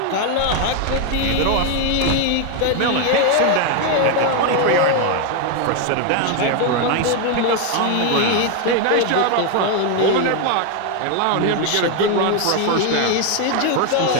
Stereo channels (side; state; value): both; different; correlation 0.01